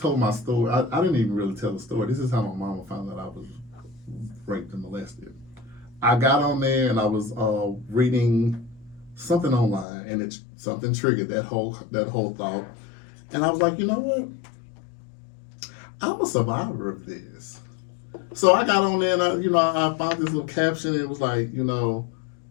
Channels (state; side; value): drops out; right; at 9.9 s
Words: my story, I didn't even really tell the story. This is how my mama found out I was raped and molested. I got on there and I was reading something online, and something triggered that whole thought. And I was like, you know what? I'm a survivor of this. So I got on there and I found this little caption. And it was like,